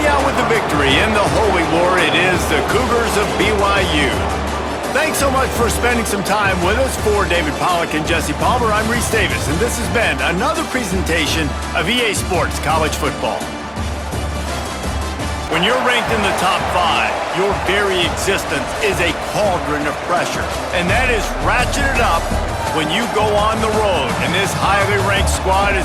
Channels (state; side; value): identical; both; correlation 1.00